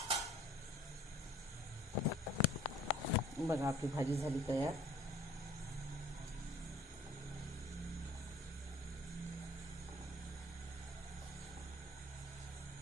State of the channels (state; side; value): normal; both; correlation 0.52